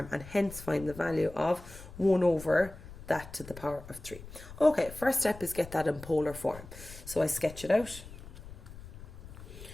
and hence find the value of 1 over that to the power of 3. Okay, first step is get that in polar form. So I sketch it out.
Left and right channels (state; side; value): noise; left; rumble, 15 dB below the sound